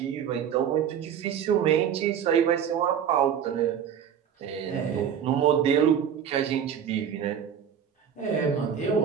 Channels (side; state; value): left; quieter; 8.5 dB